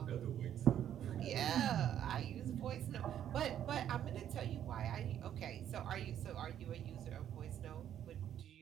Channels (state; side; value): quieter; left; 10.4 dB